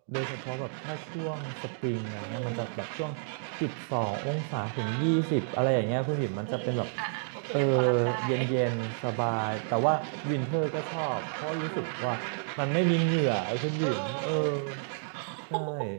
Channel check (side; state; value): left; silent; digital silence